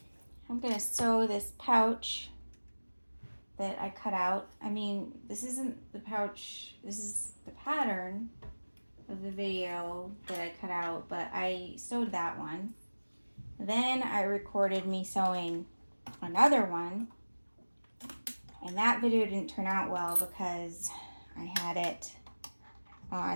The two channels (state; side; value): inverted; both; correlation -1.00